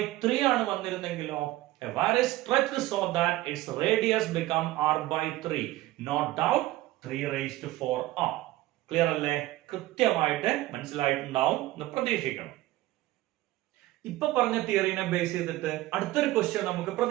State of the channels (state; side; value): quieter; left; 17.0 dB